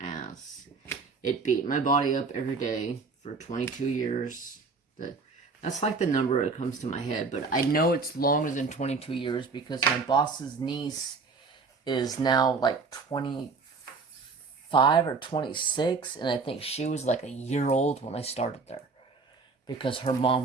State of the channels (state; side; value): quieter; left; 4.5 dB